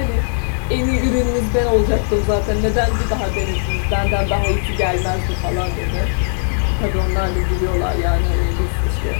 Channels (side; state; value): right; silent; digital silence